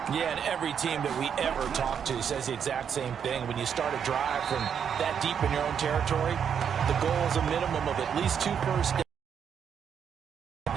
Yeah, and every team that we ever talk to says the exact same thing. When you start a drive from that deep in your own territory, the goal is a minimum of at least 2 first downs.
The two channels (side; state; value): left; quieter; 7.7 dB